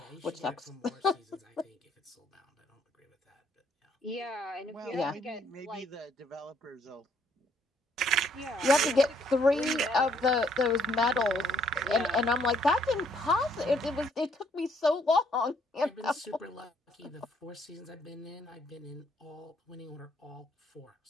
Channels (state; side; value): normal; both; correlation 0.67